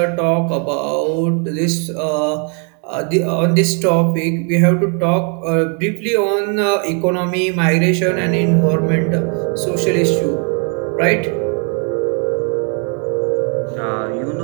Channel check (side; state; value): left; quieter; 39.0 dB